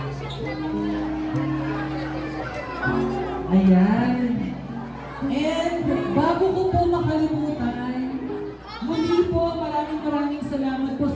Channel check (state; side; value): identical; both; correlation 1.00